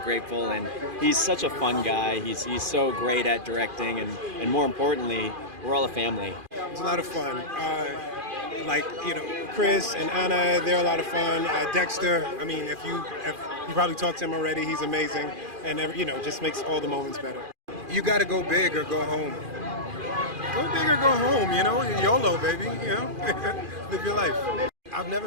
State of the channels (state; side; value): late; left; 2.4 ms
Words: And he's such a fun guy. He's so great at directing, and more importantly, we're all a family. It's a lot of fun. Chris and Anna, they're a lot of fun. Dexter, I mean, if you probably talked to him already, he's amazing, and just makes all the moments better. You got to go big or go home. Go big or go home, YOLO, baby, live your life. I've never